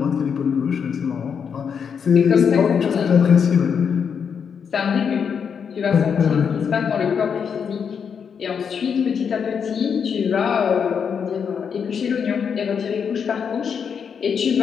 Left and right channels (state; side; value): quieter; right; 6.9 dB